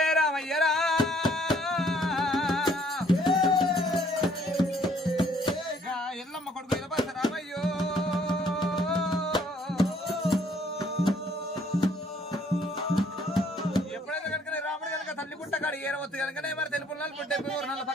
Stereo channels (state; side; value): normal; both; correlation 0.63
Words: రామయ్యరా ఎల్లమ్మ కొడుకు ఎలబస రామయ్యో ఎప్పుడైతే కనుక రాముడు కనుక తల్లి గుట్ట కాడు ఏరవద్దు కనుకనే మరి తెలుపు పుట్టే నల్ల